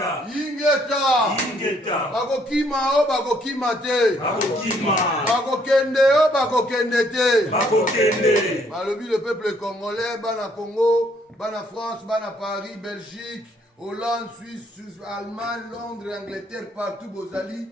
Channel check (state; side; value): normal; both; correlation 0.67